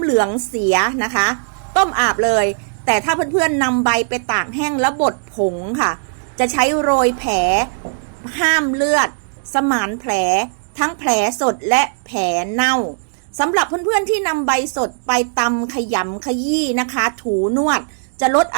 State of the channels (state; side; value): silent; left; digital silence